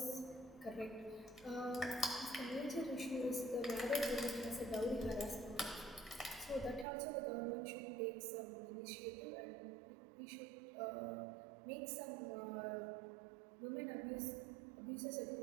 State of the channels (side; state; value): left; drops out; at 6.9 s